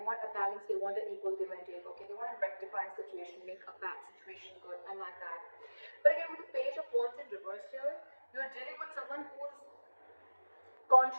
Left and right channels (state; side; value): inverted; both; correlation -1.00